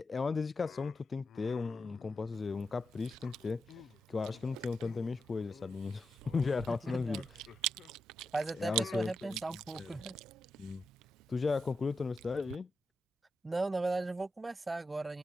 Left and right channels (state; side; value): normal; both; correlation 0.87